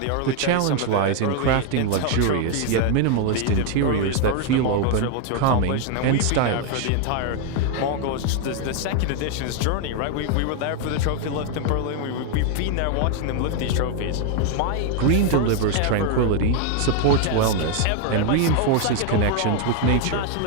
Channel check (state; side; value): different; both; correlation 0.00